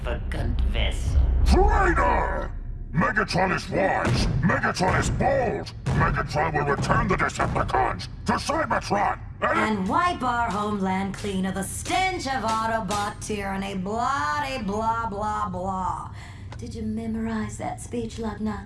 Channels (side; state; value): both; identical; correlation 1.00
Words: vessel. Traitor! Megatron is wise! Megatron is bold! Megatron will return the Decepticons to Cybertron! And wipe our homeland clean of the stench of Autobot tyranny, blah blah blah. Did you memorize that speech,